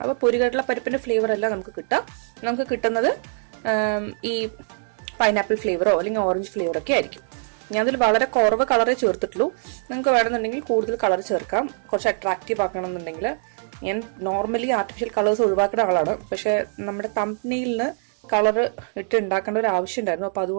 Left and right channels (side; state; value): left; silent; digital silence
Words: അപ്പൊ പൊരികടല പരിപ്പിന്റെ ഫ്ലേവർ അല്ല നമുക്ക് കിട്ടുക. നമുക്ക് കിട്ടുന്നത് ഈ പൈനാപ്പിൾ ഫ്ലേവറോ അല്ലെങ്കിൽ ഓറഞ്ച് ഫ്ലേവറോ ഒക്കെ ആയിരിക്കും. ഞാൻ അതിൽ വളരെ കുറവ് കളറേ ചേർത്തിട്ടുള്ളൂ. നിങ്ങൾക്ക് വേണമെന്നുണ്ടെങ്കിൽ കൂടുതൽ കളർ ചേർക്കാം. കുറച്ച് അട്രാക്റ്റീവ് ആക്കണമെന്നുണ്ടെങ്കിൽ. ഞാൻ നോർമലി ആർട്ടിഫിഷ്യൽ കളേഴ്സ് ഒഴിവാക്കുന്ന ആളാണ്. പക്ഷെ നമ്മുടെ തംബ്നെയിലിന് കളർ ഇട്ട് ഉണ്ടാക്കേണ്ട ഒരു ആവശ്യം ഉണ്ടായിരുന്നു. അപ്പൊ